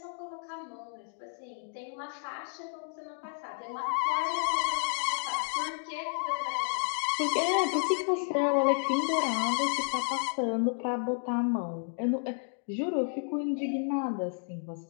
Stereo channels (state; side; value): silent; right; 57 dB below the other